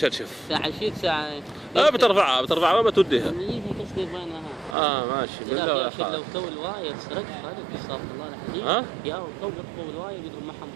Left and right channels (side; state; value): left; drops out; at 4.8 s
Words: ساعة شيت ساعة. بترفعها ما بتوديها. قصدي بينها. ماشي بالله يا اخي لو تو الواية سرقت هذا استغفر الله العظيم. يا تو يطفوا الواية يقدروا محن